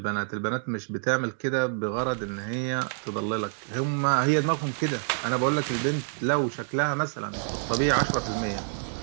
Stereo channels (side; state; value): left; silent; digital silence